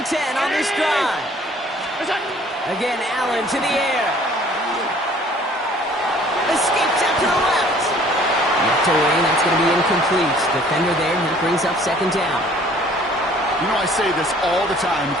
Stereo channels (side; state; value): both; normal; correlation 0.55